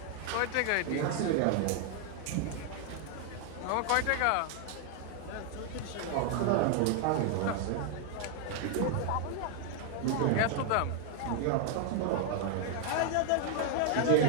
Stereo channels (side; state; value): both; different; correlation 0.00